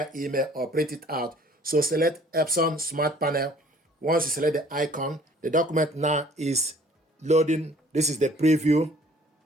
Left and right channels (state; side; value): normal; both; correlation 0.55